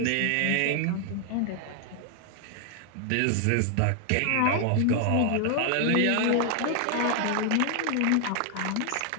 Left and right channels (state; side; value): different; both; correlation 0.00